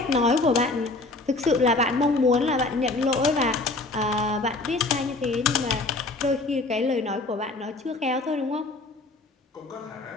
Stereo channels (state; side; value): quieter; right; 3.2 dB